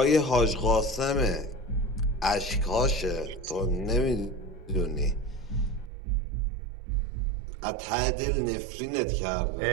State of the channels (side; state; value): left; drops out; at 5.9 s